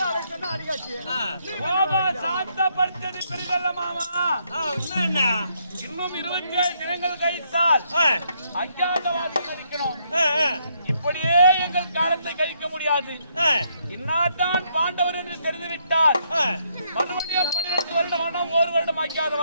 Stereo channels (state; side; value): inverted; both; correlation -0.73